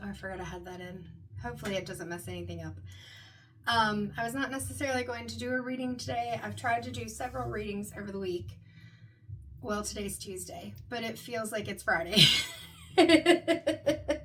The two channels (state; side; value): identical; both; correlation 1.00